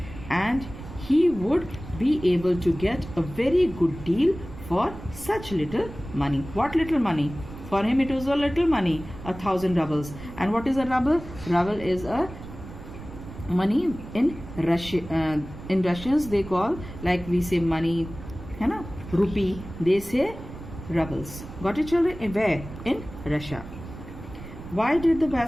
And he would be able to get a very good deal for such little money. What little money? For him it was a little money, 1,000 rubles. And what is a ruble? Ruble is a money in Russia. In Russians they call, like we say money, है ना, rupee. They say rubles. Got it children? Where? In Russia. Why did the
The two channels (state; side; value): noise; right; rumble, 13 dB below the sound